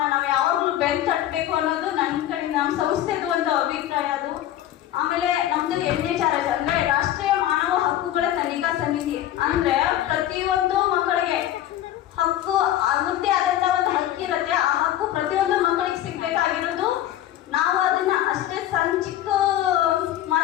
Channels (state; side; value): quieter; right; 12.6 dB